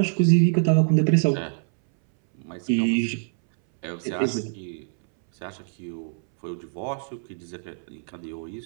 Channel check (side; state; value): left; silent; 62 dB below the other